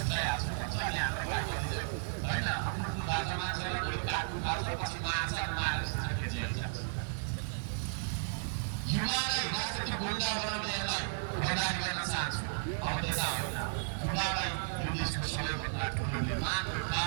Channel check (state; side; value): silent; left; digital silence